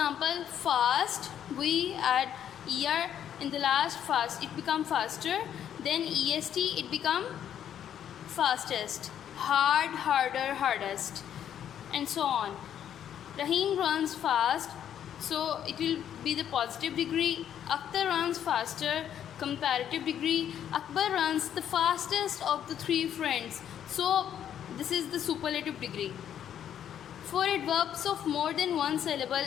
fast, we add er in the last fast, it become faster. Then est, it become fastest. Hard, harder, hardest, and so on. Rahim runs fast, so it will be the positive degree. Akhtar runs faster, comparative degree. Akbar runs the fastest of the three friends, so this is the superlative degree. For adverbs of more than one syllable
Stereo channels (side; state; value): right; quieter; 9.8 dB